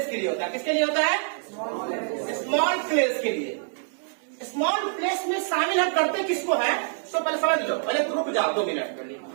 के लिए होता है। किसके लिए होता है, स्मॉल प्लेस के लिए। स्मॉल प्लेस में शामिल हम करते किसको है, तो पहले समझ लो, पहले रुक जाओ 2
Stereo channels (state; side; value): silent; left; digital silence